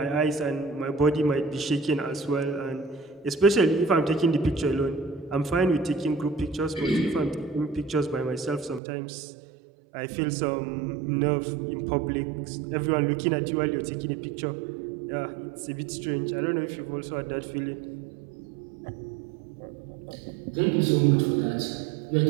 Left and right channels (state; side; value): drops out; left; at 8.8 s